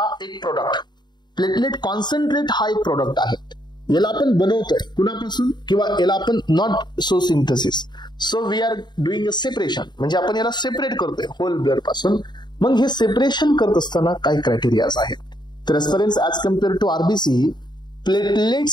एक प्रोडक्ट, प्लेटलेट कॉन्सन्ट्रेट हा एक प्रोडक्ट आहे. याला आपण बनवतोय कुणापासून? किंवा याला आपण not so synthesis, so we are doing a separation, म्हणजे आपण याला सेपरेट करतोय होल ब्लड पासून. मग हे सेपरेशन करत असताना काही क्रायटेरियाज आहेत. तर aspirants as compare to RBC platelet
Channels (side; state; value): right; late; 0.21 ms